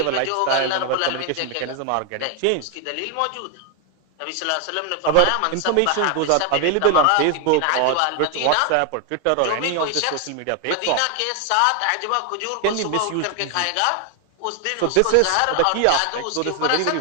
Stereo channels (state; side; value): different; both; correlation 0.00